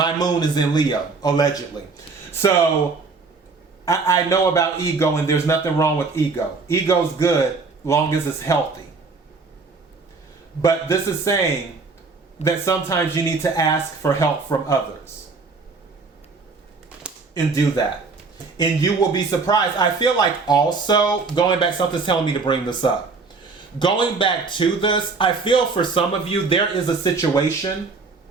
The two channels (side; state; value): left; quieter; 4.3 dB